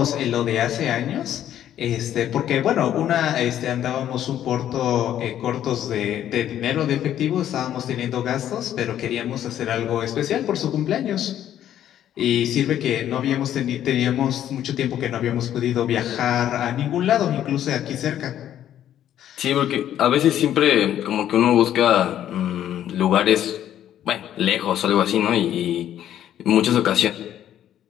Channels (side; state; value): right; quieter; 11.1 dB